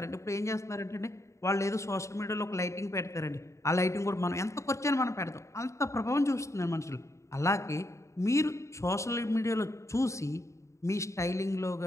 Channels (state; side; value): late; right; 0.14 ms